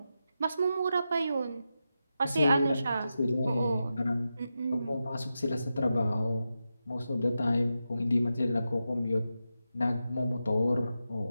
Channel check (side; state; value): both; inverted; correlation -0.89